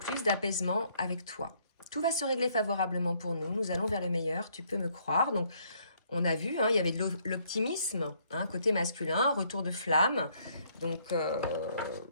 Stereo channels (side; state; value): both; inverted; correlation -0.67